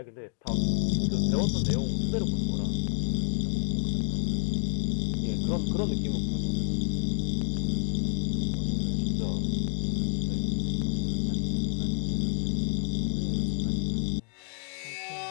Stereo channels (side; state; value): right; silent; digital silence